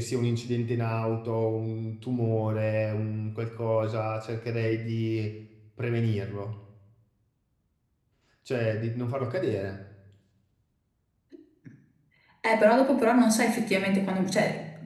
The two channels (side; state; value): both; identical; correlation 1.00